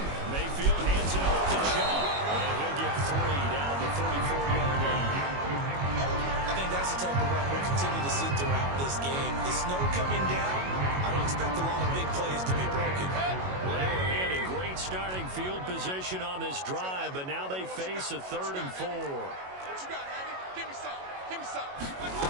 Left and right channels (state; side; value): late; left; 22 ms